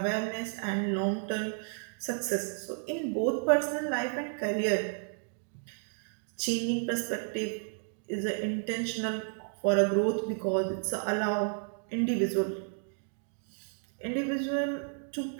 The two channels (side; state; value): left; silent; 56 dB below the other